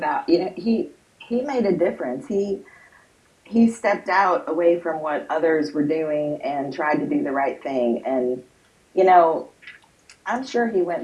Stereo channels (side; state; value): both; identical; correlation 1.00